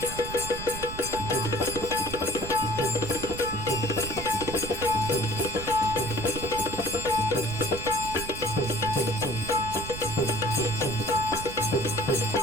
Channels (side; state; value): right; noise; rumble, 9 dB below the sound